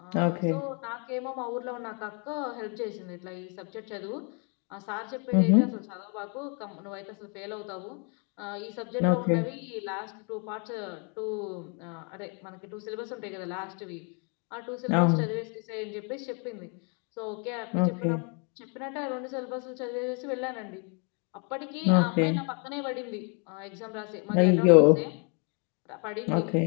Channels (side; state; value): right; quieter; 36.3 dB